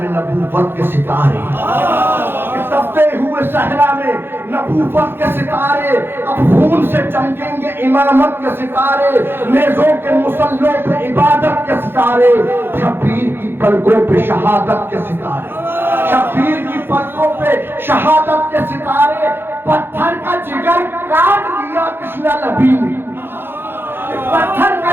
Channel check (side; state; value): left; late; 0.10 ms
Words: نبوت کے ستارے، تپتے ہوئے صحرا میں نبوت کے ستارے، اب خون سے چمکیں گے امامت کے ستارے، نیزوں کے مسلوں پہ عبادت کے ستارے، شبیر کی پلکوں پہ شہادت کے ستارے، شبیر کی پلکوں پہ شہادت کے ستارے، پتھر کا جگر کاٹ دیا کشنا نبی نے، پتھر